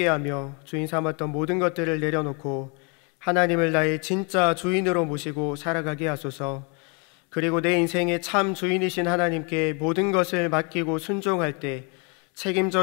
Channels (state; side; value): quieter; right; 34.2 dB